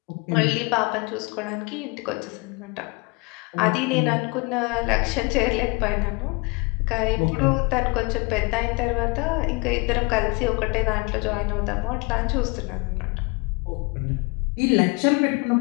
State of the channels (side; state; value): right; quieter; 28.7 dB